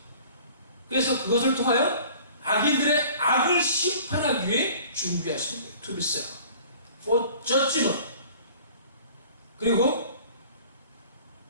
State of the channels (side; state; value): both; inverted; correlation -0.48